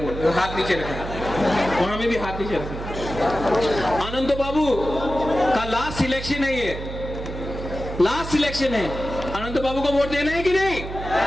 हाथ नीचे रखें, वहां में भी हाथ नीचे रखें। अनंत बाबू का लास्ट सिलेक्शन है, ये लास्ट सिलेक्शन है। अनंत बाबू को वोट देना है कि नहीं?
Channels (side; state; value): right; noise; hum, 8 dB below the sound